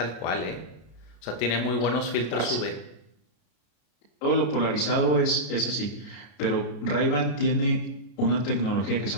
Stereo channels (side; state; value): right; late; 33 ms